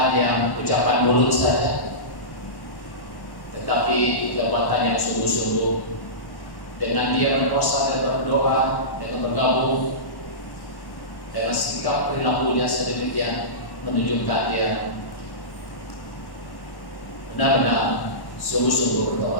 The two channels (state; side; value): late; right; 1.1 ms